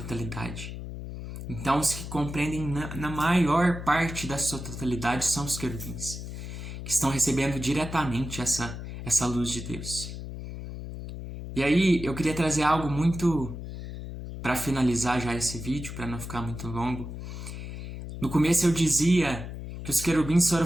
Então, os que compreendem na maior parte da sua totalidade são os querubins, que estão recebendo diretamente essa luz de Deus. E aí, eu queria trazer algo muito, para finalizar já esse vídeo, para não ficar muito longo. No começo eu dizia que os querubins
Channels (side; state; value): left; noise; hum, 9 dB below the sound